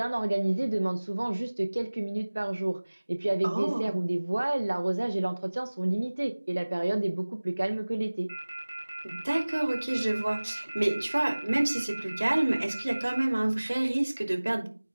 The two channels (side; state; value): both; inverted; correlation -1.00